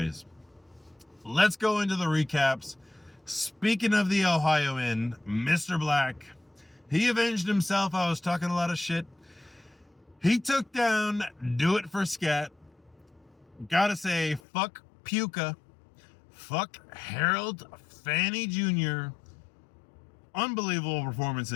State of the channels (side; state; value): right; drops out; at 14.4 s